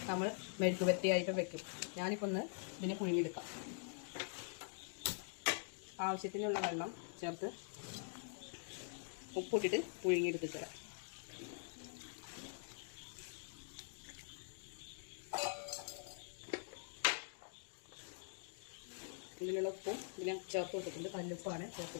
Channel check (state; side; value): silent; right; digital silence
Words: നമ്മൾ മെഴുക്കുവരട്ടിയായിട്ടും വെക്കും. ഞാനിപ്പോൾ ഒന്ന് ഇതിനെ പുഴുങ്ങിയെടുക്കാം. ആവശ്യത്തിനുള്ള വെള്ളം ചേർത്ത് ഉപ്പിട്ടിട്ട് പുഴുങ്ങിയെടുത്ത് തരാം. ഇതിലുള്ള ഉപ്പും ഇതിനെ ചേർത്ത് കൊടുത്തിട്ടുണ്ട്. കല്ലുപ്പാണ്